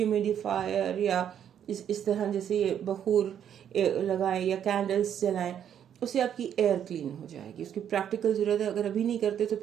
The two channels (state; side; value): quieter; left; 9.3 dB